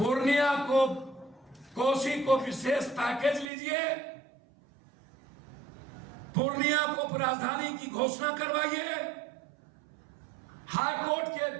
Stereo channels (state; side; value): drops out; left; at 3.5 s